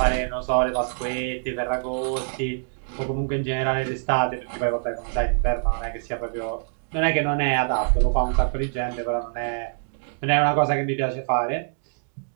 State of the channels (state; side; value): silent; left; digital silence